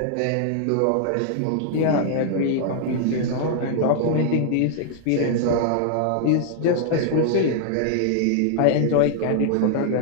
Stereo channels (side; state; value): both; different; correlation 0.00